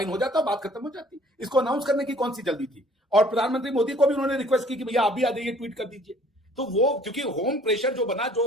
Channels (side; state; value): both; normal; correlation 0.55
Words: हो जाता, बात खत्म हो जाती। इसको अनाउंस करने की कौन सी जल्दी थी? और प्रधानमंत्री मोदी को भी उन्होंने रिक्वेस्ट की कि भैया आप भी आ जाइए, ट्वीट कर दीजिए। तो वो क्योंकि होम प्रेशर जो बना,